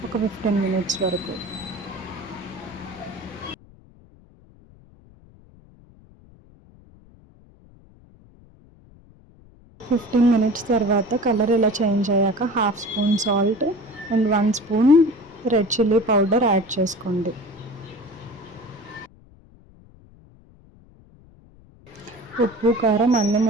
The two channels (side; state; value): left; noise; rumble, 26 dB below the sound